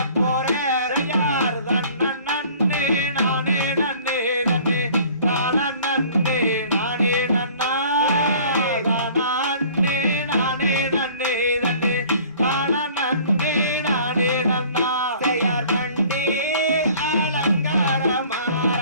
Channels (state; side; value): inverted; both; correlation -0.50